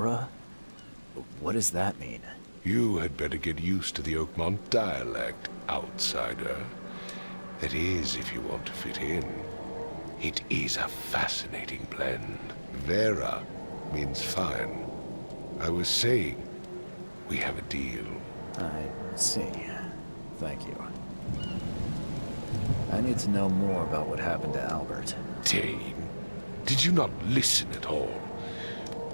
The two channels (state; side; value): inverted; both; correlation -1.00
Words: What does that mean? You had better get used to the Oakmont dialect, outsider. That is, if you want to fit in. It is a fascinating blend. Vera means fine. I was saying, we have a deal. I see. Thank you. I need to know more about what happened to Albert. Dane, did you not listen at all?